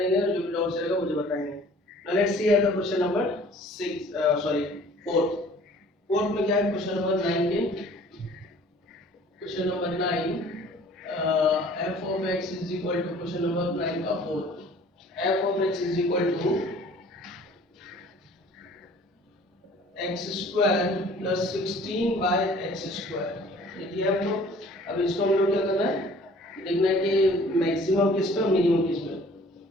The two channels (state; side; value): normal; both; correlation 0.51